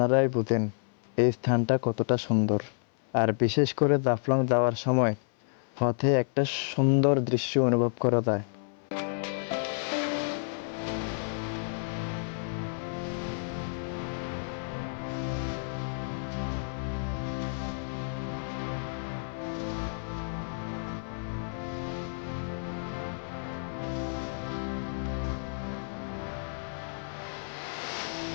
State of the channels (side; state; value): right; silent; 58 dB below the other